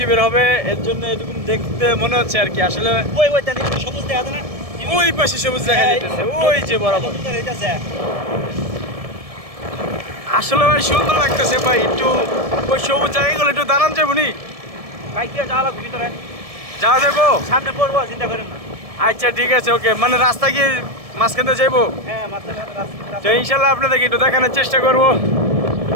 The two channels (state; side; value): late; left; 1.7 ms